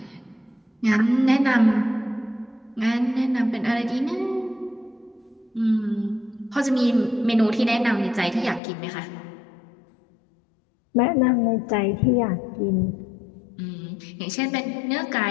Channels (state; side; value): drops out; right; at 8.6 s